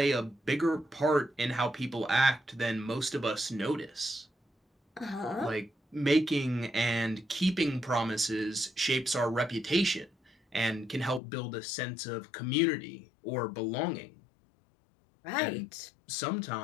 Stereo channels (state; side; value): drops out; right; at 11.2 s